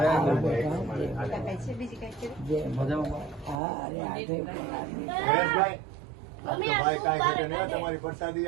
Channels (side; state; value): left; drops out; at 3.6 s